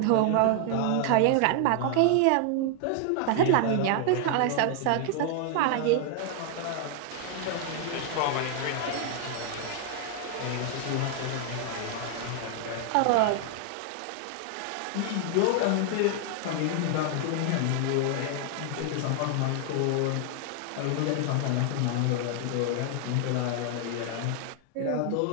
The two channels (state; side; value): different; both; correlation 0.00